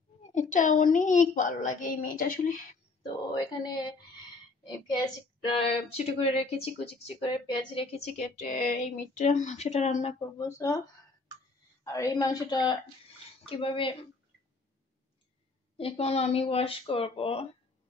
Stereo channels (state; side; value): quieter; right; 3.8 dB